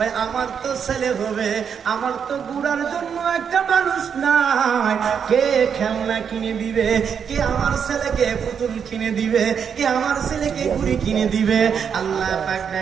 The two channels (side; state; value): left; quieter; 7.2 dB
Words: আমার তো ছেলে হবে, আমার তো গুড়ার জন্য একটা মানুষ নাই। কে খেলনা কিনে দিবে? কে আমার ছেলেকে পুতুল কিনে দিবে? কে আমার ছেলেকে ঘুড়ি কিনে দিবে? আল্লাহ পাক